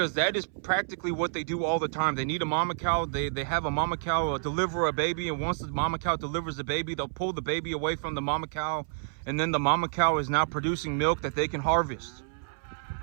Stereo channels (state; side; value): silent; left; 59 dB below the other